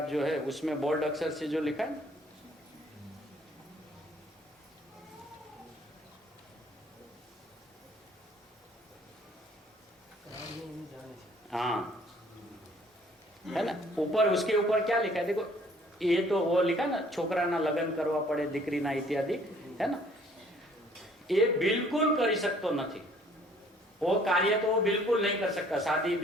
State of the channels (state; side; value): normal; both; correlation 0.58